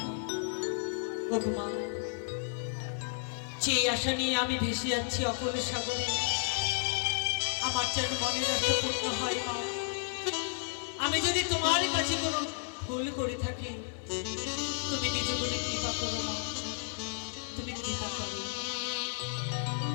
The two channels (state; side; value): silent; right; digital silence